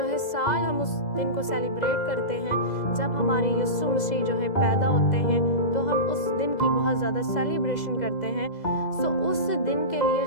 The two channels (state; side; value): late; right; 2.0 ms